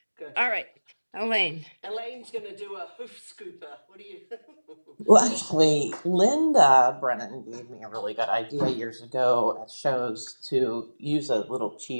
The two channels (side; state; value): both; inverted; correlation -1.00